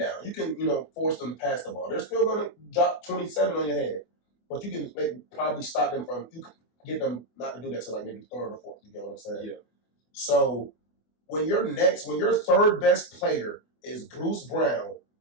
You can force them to pass the ball. They're still going to drop 27 on your head, but you can probably stop them from. You can get them not to do that till like maybe 3rd or 4th. You get what I'm saying? Yeah. So when your 3rd best player is Bruce Brown,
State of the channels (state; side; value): late; right; 24 ms